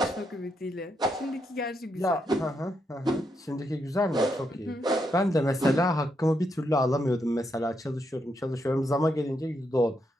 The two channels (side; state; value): both; normal; correlation 0.80